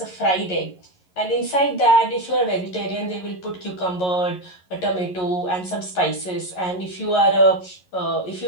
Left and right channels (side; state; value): right; late; 11 ms